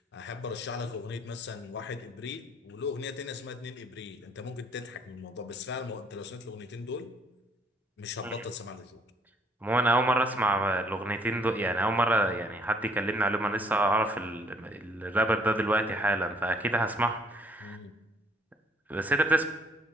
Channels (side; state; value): both; normal; correlation 0.63